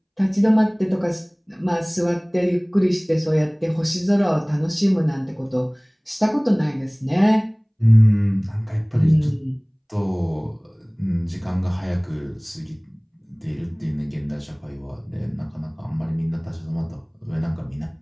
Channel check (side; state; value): both; identical; correlation 1.00